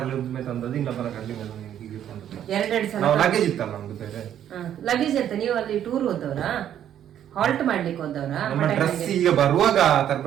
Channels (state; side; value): quieter; left; 10.4 dB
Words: ಒಮ್ಮೆ ತಂದದ್ದು, ಇನ್ನೊಬ್ಬನ ಕಾರಲ್ಲಿ ಹೀಗೆ ತಂದದ್ದು. 2 ಸಲ ಲಗೇಜ್ ಇತ್ತಲ್ಲ ನಮ್ದು ಬೇರೆ. ಲಗೇಜ್ ಇತ್ತ. ನೀವು ಅಲ್ಲಿ ಟೂರ್ ಹೋದವ್ರಾ, ಹಾಲ್ಟ್ ಮಾಡ್ಲಿಕ್ಕೆ ಹೋದವ್ರಾ? ಈಗ ಬರುವಾಗ